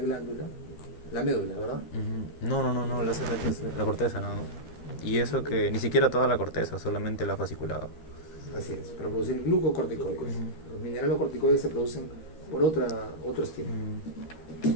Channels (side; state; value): right; late; 13 ms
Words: la médula, ¿verdad? No, la ACTH es la corteza, no. Y eso que ni siquiera toda la corteza, solamente la fasciculada. Así es, para producir glucocorticoides. Los mineralocorticoides se producen por otro estímulo.